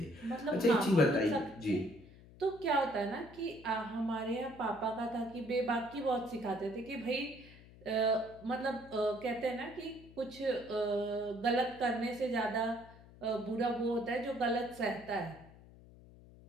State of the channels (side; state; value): left; noise; hum, 21 dB below the sound